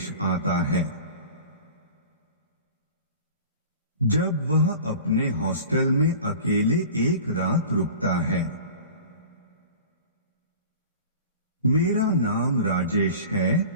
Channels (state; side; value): inverted; both; correlation -0.39